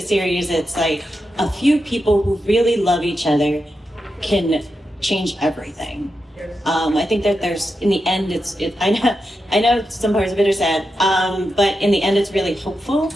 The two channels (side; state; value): both; normal; correlation 0.88